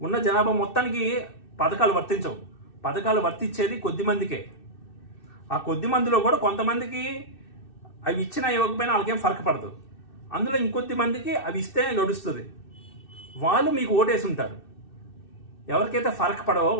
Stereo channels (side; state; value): right; late; 2.6 ms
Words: ఉన్న జనాభా మొత్తానికి పథకాలు వర్తించవు. పథకాలు వర్తించేది కొద్ది మందికే. ఆ కొద్ది మందిలో కూడా కొంతమందికి అవి ఇచ్చినా ఇవ్వకపోయినా వాళ్ళకేం ఫరక పడదు. అందులో ఇంకొద్ది మందికి అవి ఇస్తేనే గడుస్తుంది. వాళ్ళు మీకు ఓటేసి ఉంటారు. ఎవరికైతే ఫరక పడవో